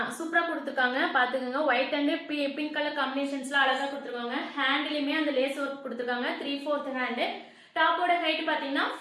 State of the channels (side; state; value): both; identical; correlation 1.00